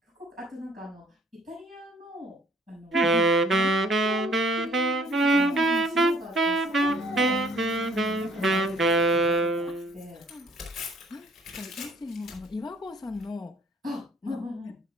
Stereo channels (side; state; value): both; normal; correlation 0.58